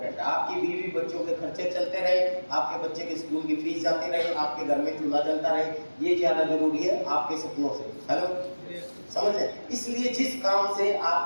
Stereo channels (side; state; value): both; inverted; correlation -1.00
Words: है। आपकी बीवी बच्चों के खर्चे चलते रहे, आपके बच्चे के स्कूल की फीस जाती रहे, आपके घर में चूल्हा जलता रहे, ये ज्यादा जरूरी है आपके सपनों से। हेलो, समझ लें। इसलिए जिस काम से